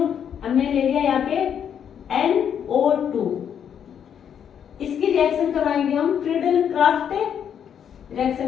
हमने ले लिया यहाँ पे NO2, इसकी रिएक्शन करवाएंगे हम फ्रीडल क्राफ्ट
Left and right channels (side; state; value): right; quieter; 8.5 dB